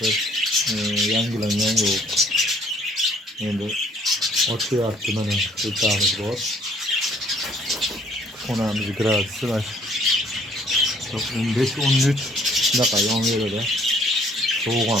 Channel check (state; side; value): normal; both; correlation 0.61